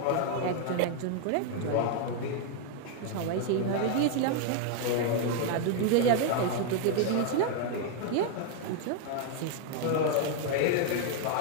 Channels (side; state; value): both; different; correlation 0.00